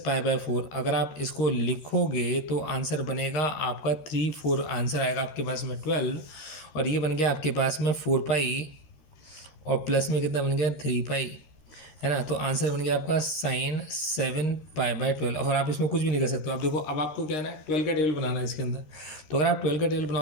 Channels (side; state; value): right; late; 13 ms